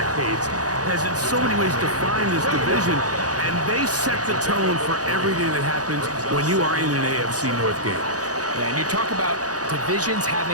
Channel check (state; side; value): late; left; 0.67 ms